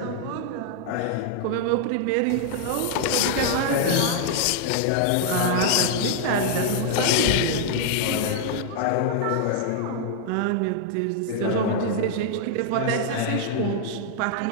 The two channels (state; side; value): different; both; correlation -0.01